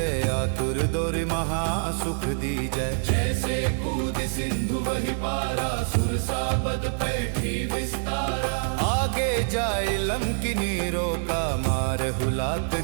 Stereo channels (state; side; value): silent; left; digital silence